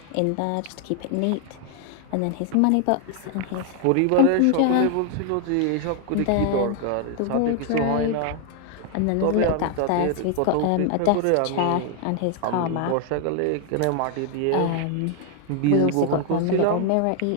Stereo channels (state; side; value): different; both; correlation 0.00